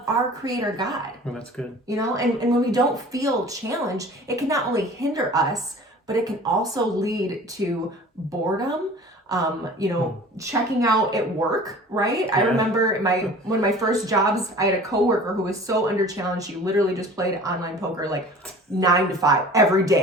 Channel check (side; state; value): both; normal; correlation 0.44